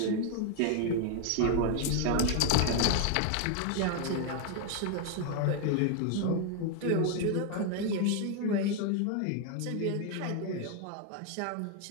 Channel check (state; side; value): different; both; correlation 0.01